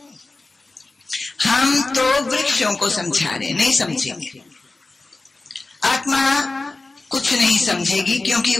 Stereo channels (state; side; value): quieter; right; 3.3 dB